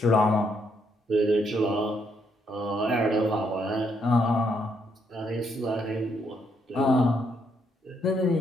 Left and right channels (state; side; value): normal; both; correlation 0.74